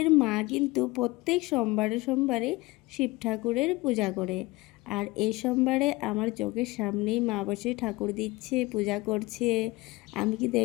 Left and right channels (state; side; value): quieter; right; 21.6 dB